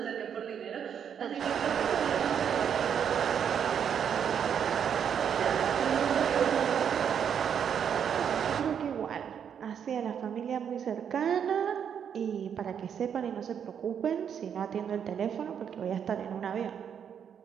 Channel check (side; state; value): left; quieter; 8.0 dB